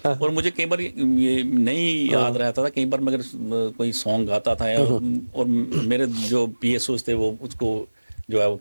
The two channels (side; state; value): both; inverted; correlation -1.00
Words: और मुझे कई बार ये नहीं याद रहता था, कई बार मैं अगर कोई सॉन्ग गाता था और मेरे जो पीएसओ थे वो उसको जो है वो